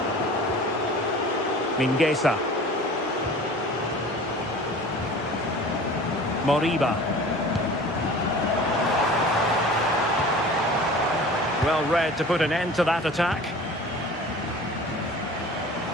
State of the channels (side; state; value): both; normal; correlation 0.41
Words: Mingueza. Moriba. Well read to put an end to that attack.